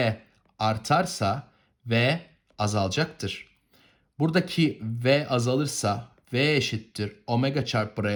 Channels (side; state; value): both; identical; correlation 1.00